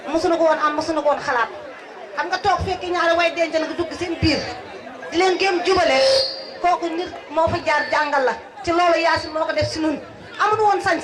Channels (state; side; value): identical; both; correlation 1.00